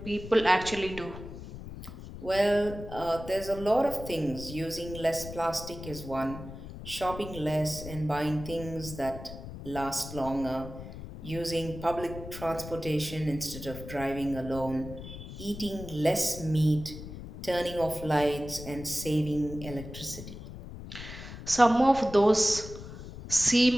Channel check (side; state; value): left; noise; rumble, 12 dB below the sound